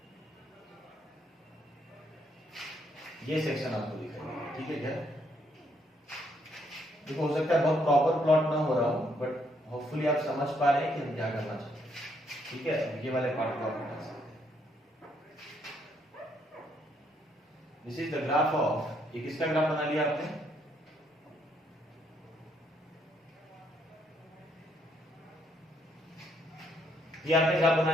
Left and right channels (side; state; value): both; normal; correlation 0.72